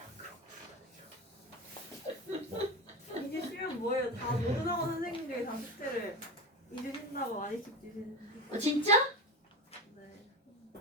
이게 쉬면 뭐예요? 다 모르는 선생님들이 다 숙제를 2주 쉰다고 많이씩 주시는데. 진짜? 네.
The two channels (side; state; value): both; normal; correlation 0.23